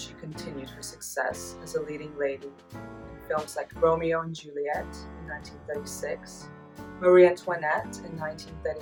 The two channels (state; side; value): identical; both; correlation 1.00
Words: continued her success as a leading lady in films like Romeo and Juliet in 1936, Marie Antoinette in